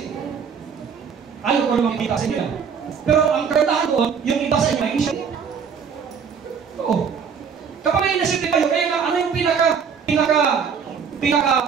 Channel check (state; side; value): quieter; left; 6.6 dB